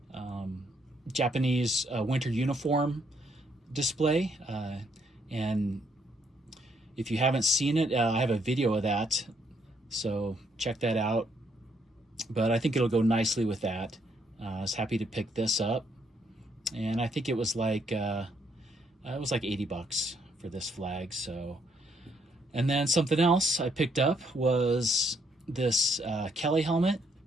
Japanese winter uniform display. And if you haven't seen it, I have a video of that, so check that out. But I think it'll go nicely with that. I was happy to pick this up, and I think it was like $80 for this flag. So, and then something else I picked up was this Kelly helmet.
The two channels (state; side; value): normal; both; correlation 0.72